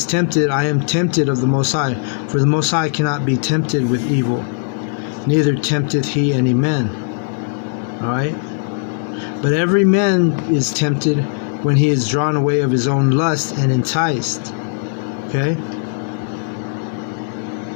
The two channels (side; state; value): right; silent; 57 dB below the other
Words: tempted, I am tempted of the Most High, for the Most High cannot be tempted with evil, neither tempteth he any man. Alright? But every man is tempted when he is drawn away of his own lust and enticed. Okay?